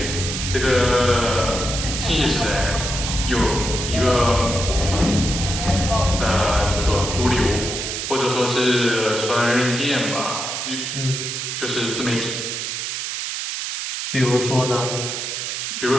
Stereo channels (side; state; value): right; noise; hiss, 4 dB below the sound